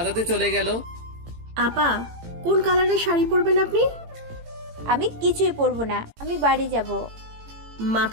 চলে গেল। আপা, কোন কালারের শাড়ি পরবেন আপনি? আমি কিছুই পরবো না, আমি বাড়ি যাব।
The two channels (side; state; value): left; late; 18 ms